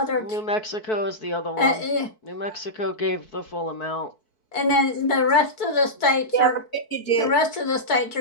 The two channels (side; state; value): right; late; 4.6 ms